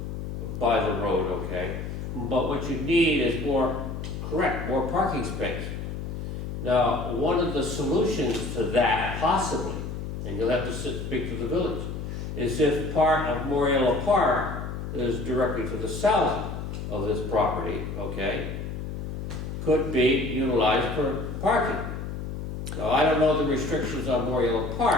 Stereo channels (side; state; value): left; noise; hum, 6 dB below the sound